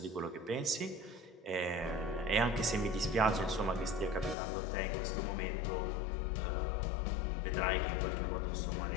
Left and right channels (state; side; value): drops out; right; at 4.4 s